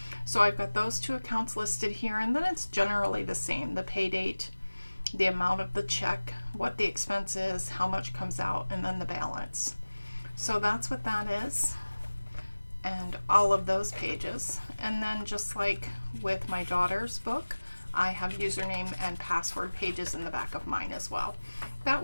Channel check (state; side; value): inverted; both; correlation -1.00